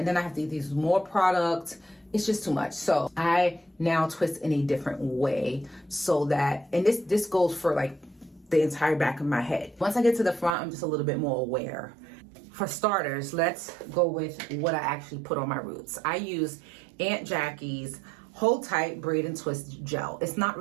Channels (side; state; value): left; drops out; at 10.5 s